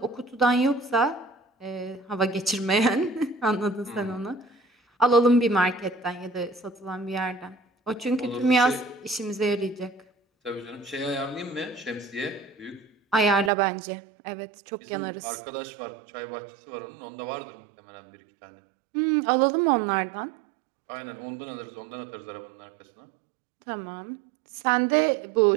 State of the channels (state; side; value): drops out; left; at 13.5 s